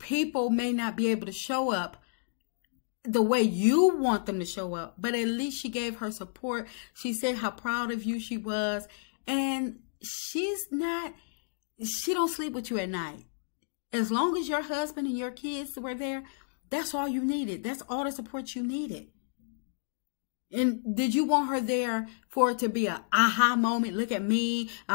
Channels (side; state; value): right; silent; digital silence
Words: people may not be able to show up the way you want them to show up, but at least she gave her support. She said how proud of you she was. And she don't sleep with you at night. As long as your husband and your kids were there, that's all you needed. That's all the support you needed. And did you want her there for it to be a aha moment? Look at me,